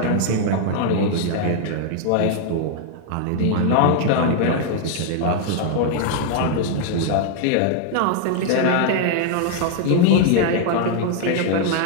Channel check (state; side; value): different; both; correlation 0.00